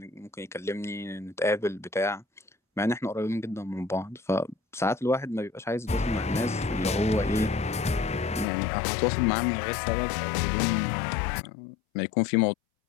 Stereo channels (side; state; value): right; drops out; at 8.5 s